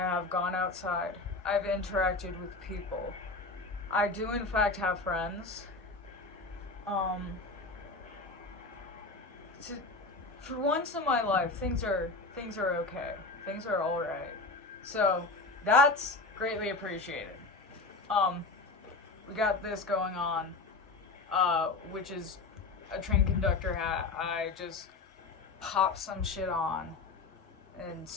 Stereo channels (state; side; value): quieter; right; 3.7 dB